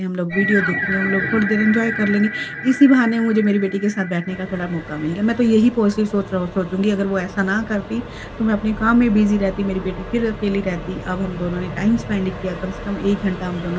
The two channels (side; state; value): both; identical; correlation 1.00